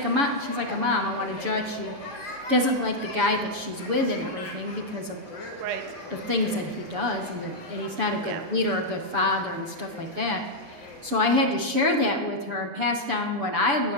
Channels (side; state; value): left; late; 7.0 ms